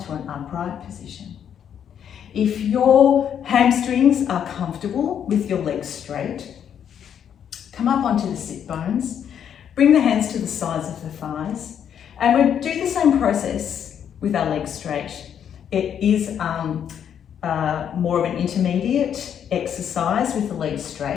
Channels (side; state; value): right; quieter; 8.8 dB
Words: to an upright position. If your hamstrings are comfortable with your legs straight, come up onto the sit bones, bring the hands to the sides of the thighs, and we'll do the same process with our legs straight. It is more of an intermediate exercise with the legs